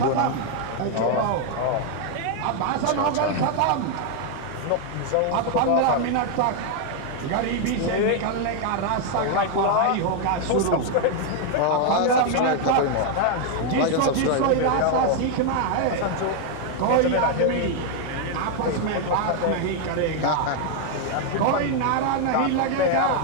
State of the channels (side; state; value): both; different; correlation 0.00